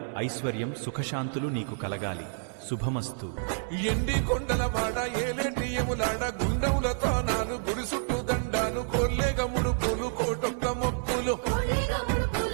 ఐశ్వర్యం, సుఖశాంతులు నీకు కలగాలి. శుభమస్తు. ఎండి కొండల వాడ ఏలేటి ఎములాడ గుండముల తానాలు గుడి చుట్టూ దండాలు కొల్లేగ ముడుపులు కోటొక్క మొక్కులు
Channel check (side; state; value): left; silent; digital silence